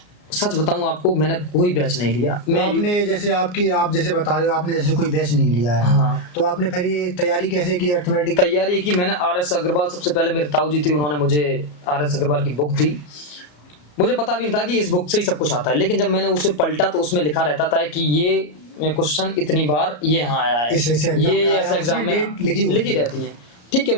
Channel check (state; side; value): late; right; 34 ms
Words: सच बताऊं आपको, मैंने कोई बैच नहीं लिया। तो आपने जैसे आप जैसे बता रहे हो, आपने जैसे कोई बैच नहीं लिया है, हाँ। तो आपने फिर ये तैयारी कैसे की अर्थमेटिक? तैयारी की मैंने RS अग्रवाल, सबसे पहले मेरे ताऊ जी थी, उन्होंने मुझे RS अग्रवाल की बुक दी। मुझे पता भी नहीं था कि इस बुक से ही सब कुछ आता है, लेकिन जब मैंने उसे पलटा तो उसमें लिखा रहता था कि ये क्वेश्चन इतनी बार ये यहाँ आया है, ये ऐसा एग्जाम में लिखी रहती है। ठीक है,